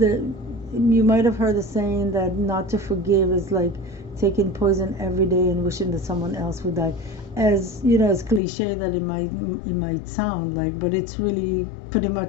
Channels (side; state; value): right; drops out; at 8.4 s